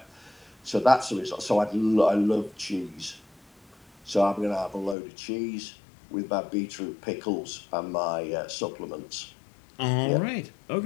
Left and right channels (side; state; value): right; drops out; at 5.0 s